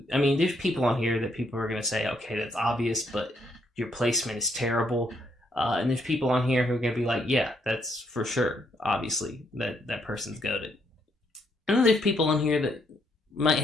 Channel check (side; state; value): both; normal; correlation 0.73